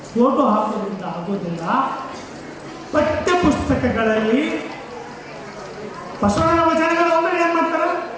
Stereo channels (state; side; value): identical; both; correlation 1.00